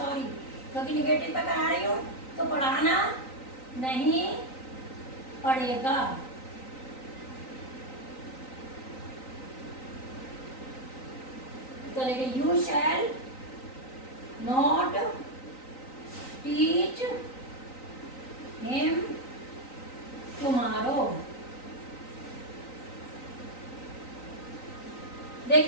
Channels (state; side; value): late; right; 3.9 ms